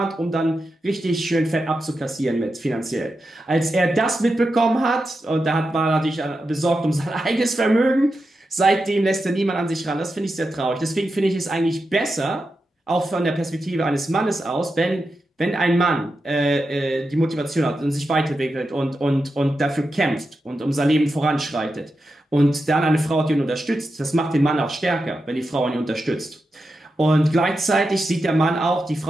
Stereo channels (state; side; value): normal; both; correlation 0.89